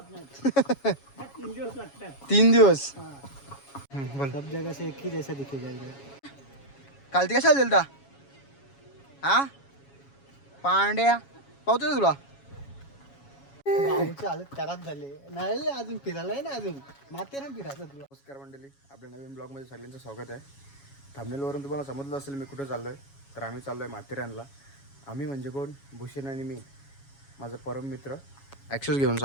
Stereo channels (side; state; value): right; late; 7.2 ms